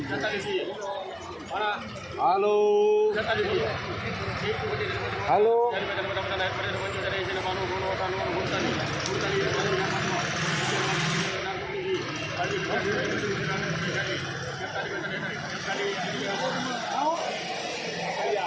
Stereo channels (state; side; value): identical; both; correlation 1.00